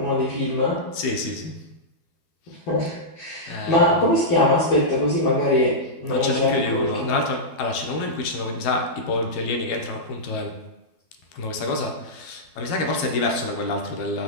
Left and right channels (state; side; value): late; right; 12 ms